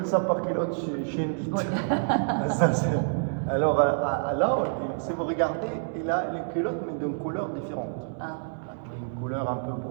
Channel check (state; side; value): silent; left; digital silence